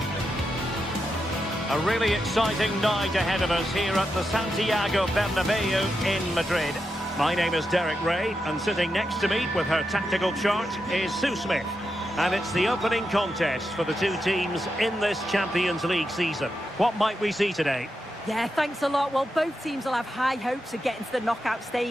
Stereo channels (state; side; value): normal; both; correlation 0.86